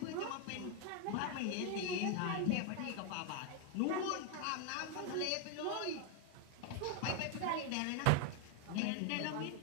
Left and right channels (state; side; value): different; both; correlation 0.01